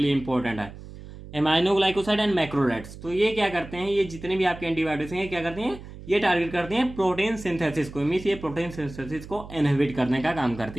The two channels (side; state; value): right; noise; hum, 15 dB below the sound